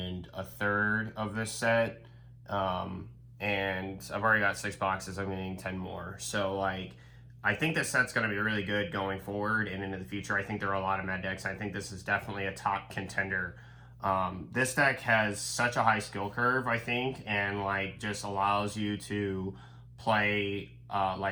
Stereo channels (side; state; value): both; identical; correlation 1.00